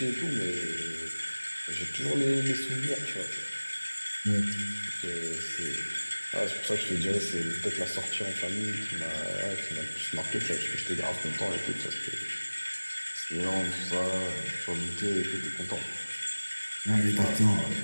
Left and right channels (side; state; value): both; inverted; correlation -1.00